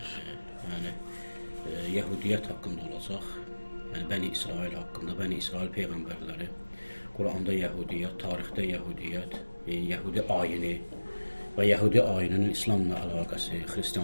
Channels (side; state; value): both; inverted; correlation -1.00